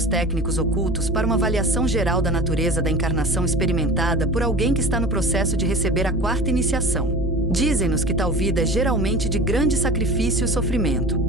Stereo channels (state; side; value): normal; both; correlation 0.36